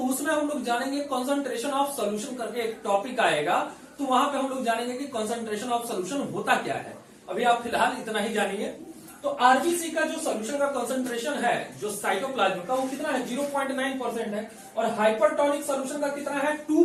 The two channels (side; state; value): both; identical; correlation 1.00